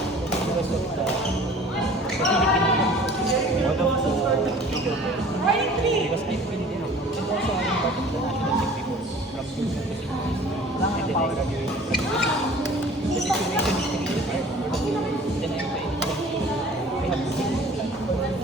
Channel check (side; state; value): both; normal; correlation 0.47